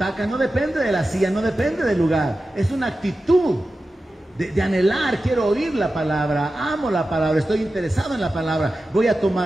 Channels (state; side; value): normal; both; correlation 0.93